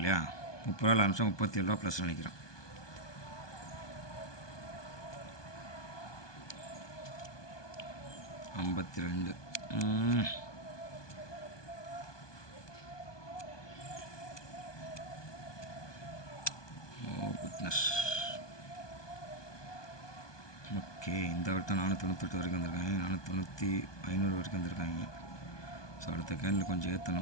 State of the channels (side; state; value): right; late; 1.2 ms